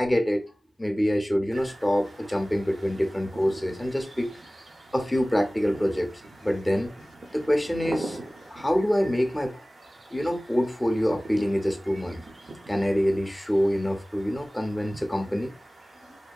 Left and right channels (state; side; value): normal; both; correlation 0.98